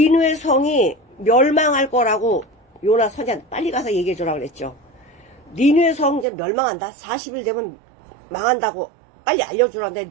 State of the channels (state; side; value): drops out; left; at 6.2 s